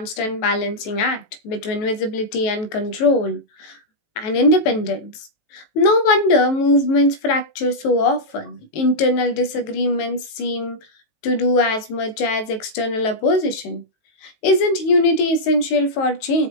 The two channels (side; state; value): right; late; 18 ms